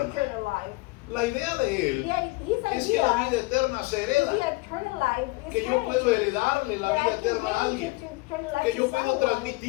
eternal life?" La idea de él His es que la idea vida eterna se is hereda, the eternal life is que yo puedo heritage. heredarle la That I vida can eterna a hand alguien, it to eternal life que to yo puedo someone.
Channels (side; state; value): right; quieter; 23.6 dB